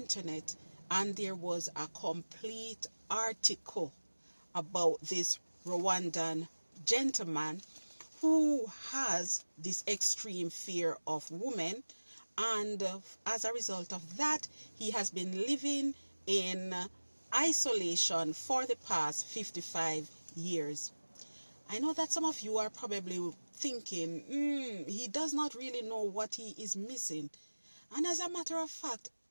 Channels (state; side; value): inverted; both; correlation -1.00